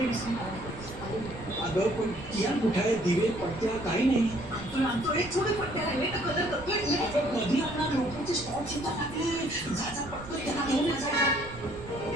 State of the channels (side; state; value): right; noise; rumble, 15 dB below the sound